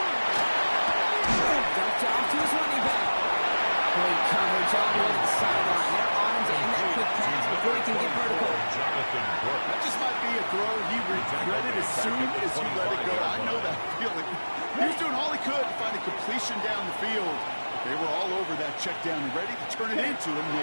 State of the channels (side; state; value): both; inverted; correlation -1.00